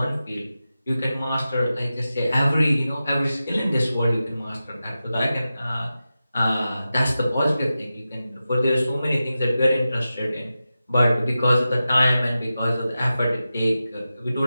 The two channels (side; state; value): both; inverted; correlation -0.93